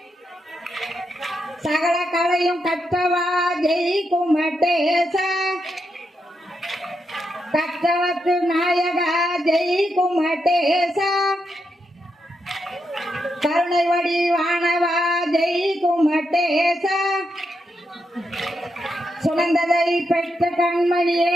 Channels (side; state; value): both; normal; correlation 0.83